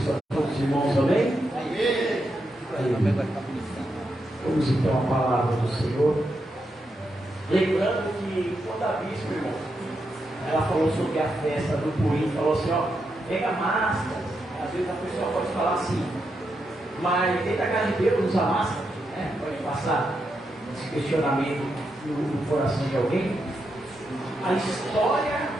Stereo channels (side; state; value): both; normal; correlation 0.84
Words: a todos os irmãos, amém? Vamos então à palavra do Senhor. Lembrando que quando a bispa, irmão, ela falou sobre a festa do Purim, falou assim, ó, pega máscara. Às vezes a pessoa pode falar assim, mas dentro da casa de Deus usa máscara, né? Pode passar esse questionamento no coração de alguém. A